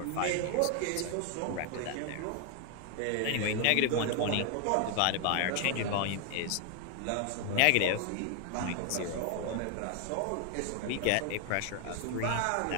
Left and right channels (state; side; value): different; both; correlation 0.00